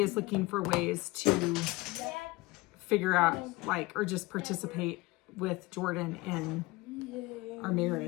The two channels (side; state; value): right; quieter; 21.9 dB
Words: looking for ways to figure out or just participate with Jordan in our